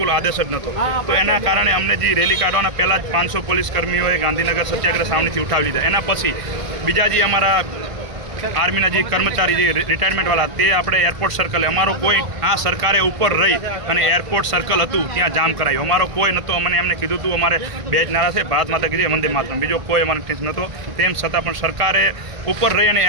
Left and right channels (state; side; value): late; left; 1.5 ms